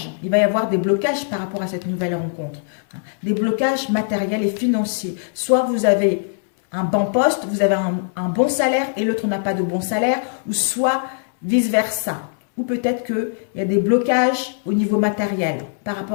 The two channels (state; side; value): silent; right; 62 dB below the other